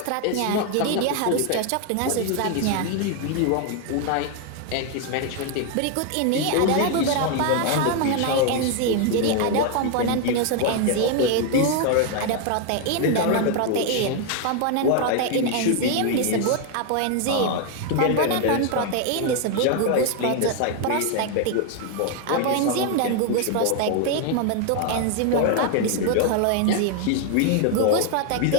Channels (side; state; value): both; different; correlation 0.01